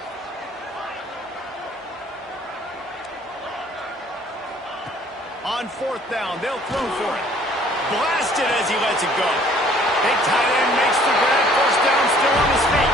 On fourth down, they'll throw for it. Blasted as he lets it go. Big tight end makes the grab. First down, still on his feet.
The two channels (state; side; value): normal; both; correlation 0.57